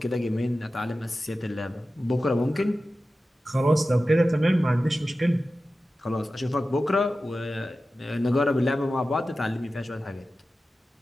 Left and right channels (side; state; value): both; normal; correlation 0.94